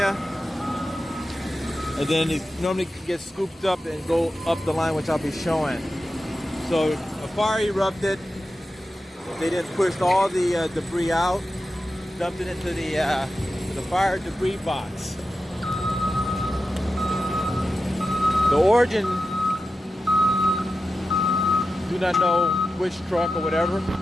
and then it normally gets scooped up and go up the line, which I'll be showing. So a fire erupted. They then pushed all the debris out, dumped it into the fire debris box. The origin, do not know which truck or whatever,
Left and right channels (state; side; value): normal; both; correlation 0.92